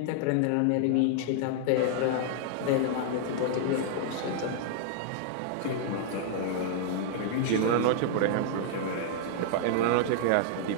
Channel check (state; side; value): different; both; correlation -0.01